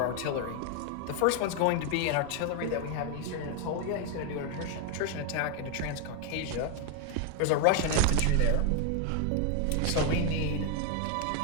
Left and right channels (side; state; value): both; different; correlation 0.01